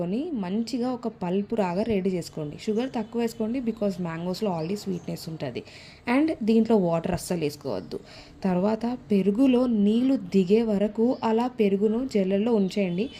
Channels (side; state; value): both; identical; correlation 1.00